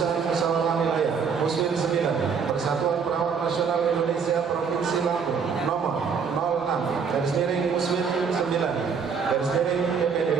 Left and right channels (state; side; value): quieter; left; 6.1 dB